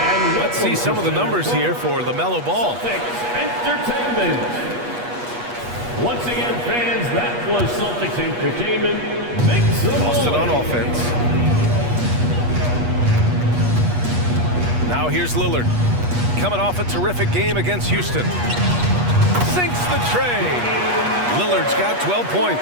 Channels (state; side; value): late; left; 8.3 ms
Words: Let's see some of the numbers here for LaMelo Ball. Entertainment. Once again, fans, that was Celtics Entertainment. Boston on offense. Now here's Lillard. Coming off a terrific game against Houston. Sinks the tray. Lillard's got 12